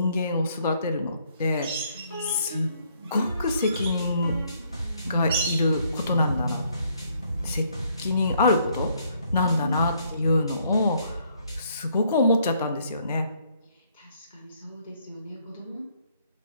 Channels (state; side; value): inverted; both; correlation -0.68